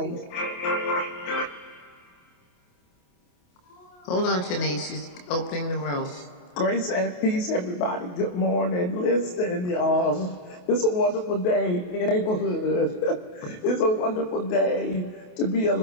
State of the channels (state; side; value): late; right; 28 ms